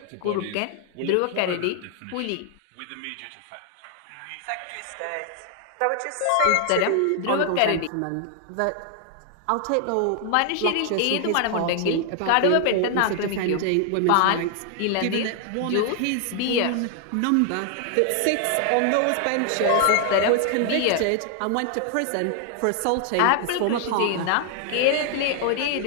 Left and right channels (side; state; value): both; different; correlation 0.00